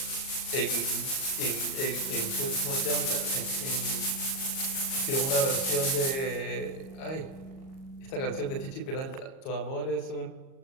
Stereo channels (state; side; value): late; right; 37 ms